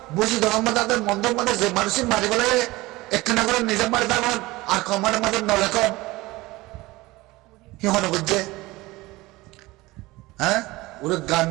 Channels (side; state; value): left; quieter; 20.3 dB